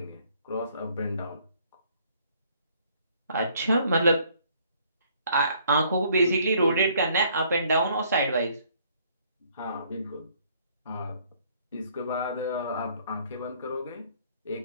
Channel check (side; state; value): both; inverted; correlation -0.63